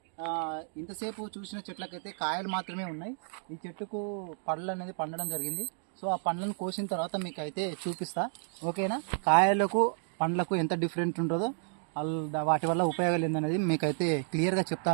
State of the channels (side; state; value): left; silent; 57 dB below the other